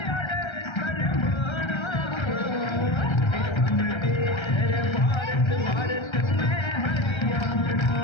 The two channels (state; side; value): late; right; 1.3 ms